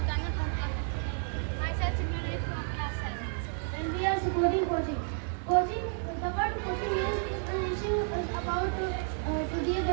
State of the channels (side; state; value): left; silent; 57 dB below the other